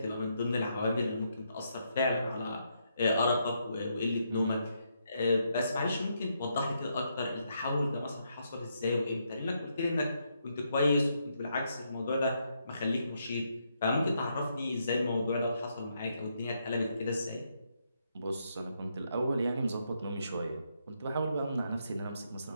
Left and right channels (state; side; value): inverted; both; correlation -0.78